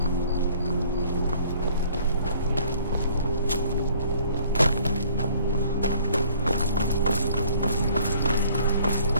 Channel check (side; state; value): both; inverted; correlation -0.56